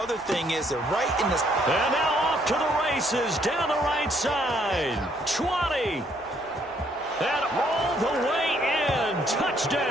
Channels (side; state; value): left; noise; hum, 26 dB below the sound